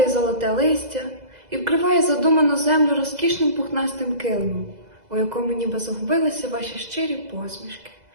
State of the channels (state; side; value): late; left; 2.0 ms